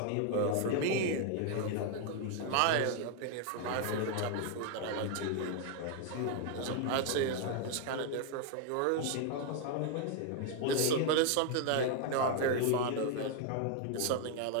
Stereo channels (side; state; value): both; different; correlation 0.00